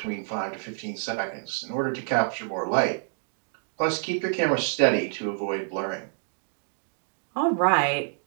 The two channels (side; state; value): left; silent; digital silence